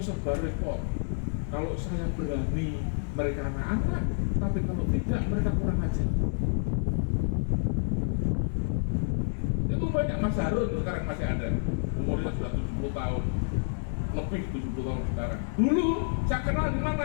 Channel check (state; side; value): silent; right; digital silence